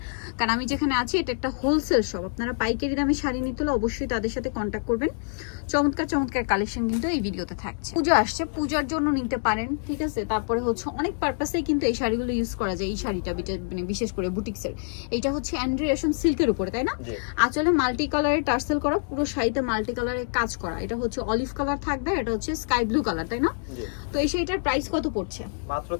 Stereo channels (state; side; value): silent; right; 61 dB below the other